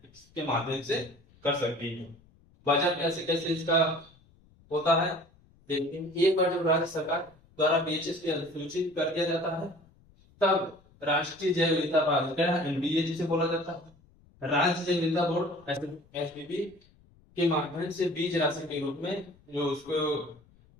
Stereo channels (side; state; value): left; noise; rumble, 29 dB below the sound